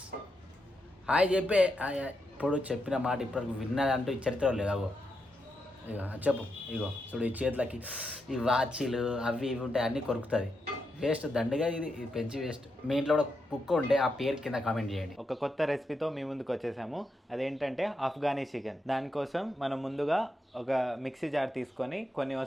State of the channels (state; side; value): normal; both; correlation 0.84